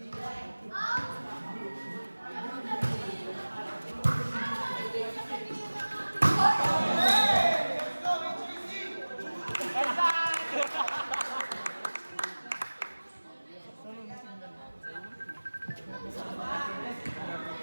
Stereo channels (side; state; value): both; inverted; correlation -1.00